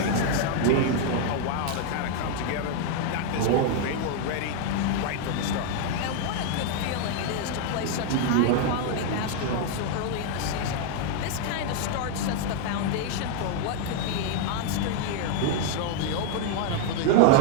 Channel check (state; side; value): different; both; correlation 0.00